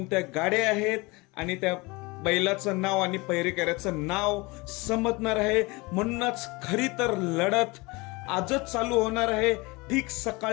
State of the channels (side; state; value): right; quieter; 25.0 dB